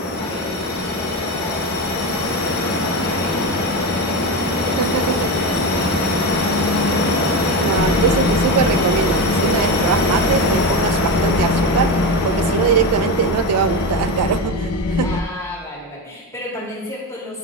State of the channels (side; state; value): both; normal; correlation 0.18